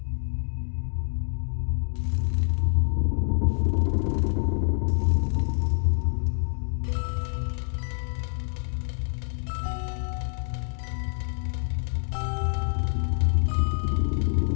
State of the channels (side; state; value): right; silent; digital silence